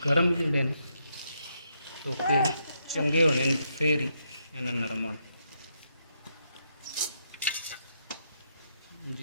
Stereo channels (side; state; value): both; inverted; correlation -0.78